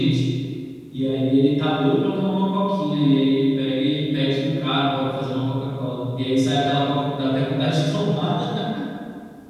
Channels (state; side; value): identical; both; correlation 1.00